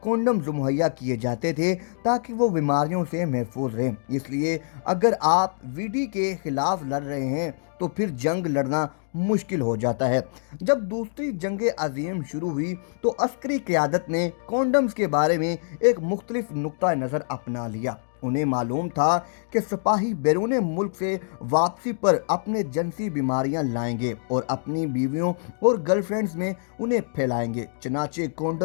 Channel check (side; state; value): right; silent; digital silence